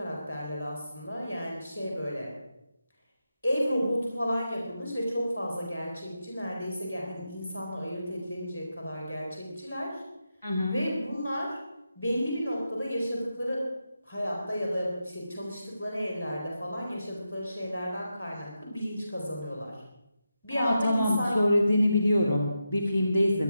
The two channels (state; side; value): inverted; both; correlation -0.88